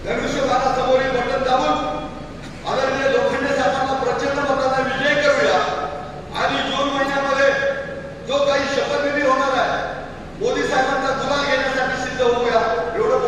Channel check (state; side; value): identical; both; correlation 1.00